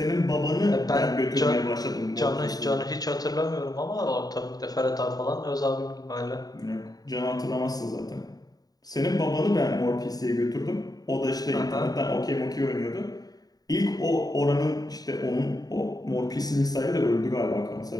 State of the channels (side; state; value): right; late; 0.18 ms